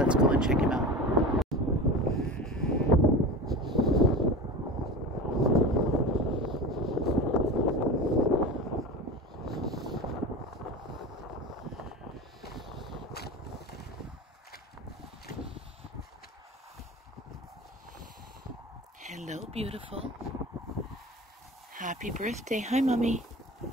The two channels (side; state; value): both; normal; correlation 0.31